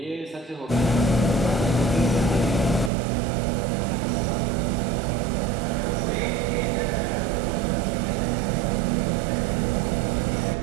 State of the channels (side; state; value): left; drops out; at 2.9 s